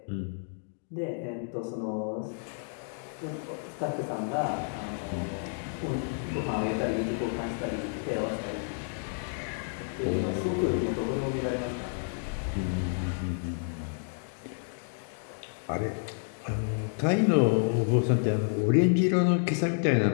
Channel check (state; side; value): silent; right; digital silence